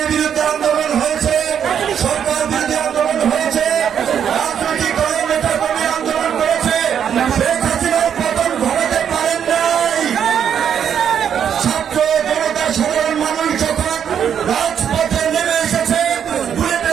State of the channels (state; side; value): quieter; left; 8.5 dB